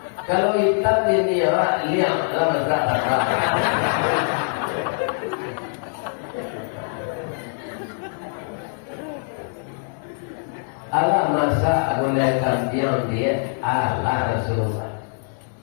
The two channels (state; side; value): silent; right; digital silence